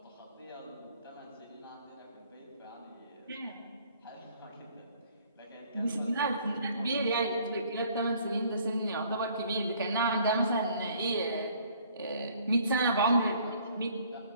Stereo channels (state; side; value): inverted; both; correlation -0.59